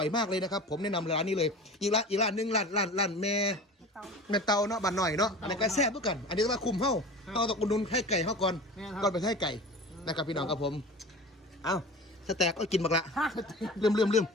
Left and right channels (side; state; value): both; normal; correlation 0.36